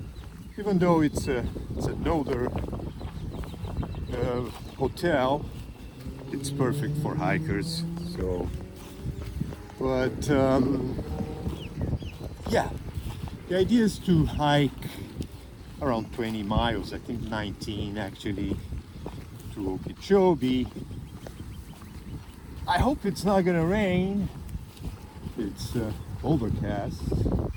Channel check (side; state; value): both; identical; correlation 1.00